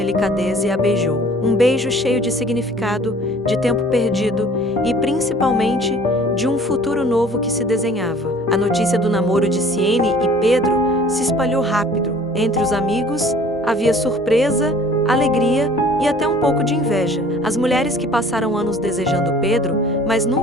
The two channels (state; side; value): normal; both; correlation 0.51